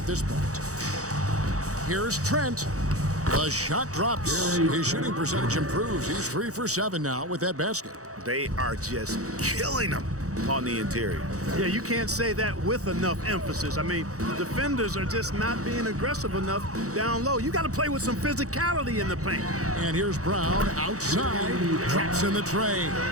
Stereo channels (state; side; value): late; left; 0.65 ms